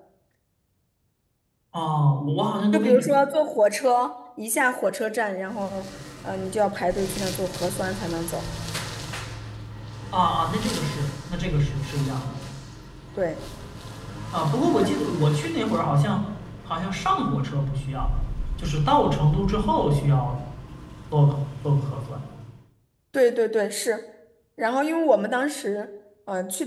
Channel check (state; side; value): identical; both; correlation 1.00